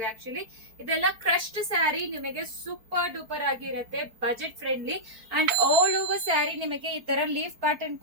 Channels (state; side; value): late; left; 4.5 ms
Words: ಆಕ್ಚುಲಿ ಇದೆಲ್ಲ ಕ್ರಶ್ಡ್ ಸ್ಯಾರಿ ನಿಮಗೆ ಸೂಪರ್ ಡೂಪರ್ ಆಗಿರುತ್ತೆ, budget friendly and all over sari ನಿಮಗೆ ಈ ತರ ಲೀಫ್ ಪ್ಯಾಟರ್ನ್